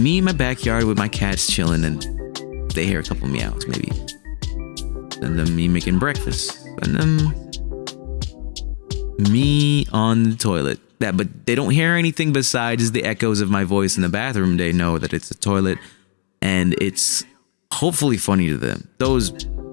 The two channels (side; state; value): right; silent; digital silence